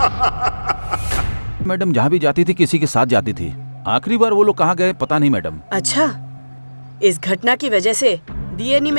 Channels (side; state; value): both; inverted; correlation -1.00